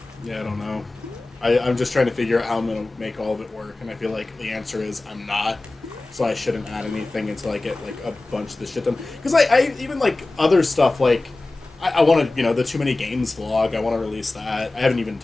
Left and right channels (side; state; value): right; quieter; 3.0 dB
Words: don't know. I'm just trying to figure out how I'm going to make all of it work, and I feel like the answer is I'm not, so I shouldn't add anything until I get, a bunch of this shit done. Because I even, other stuff, I want to, the Too Many Games vlog, I want to release that. I haven't even